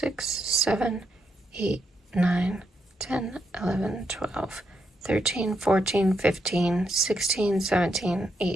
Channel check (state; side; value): normal; both; correlation 0.80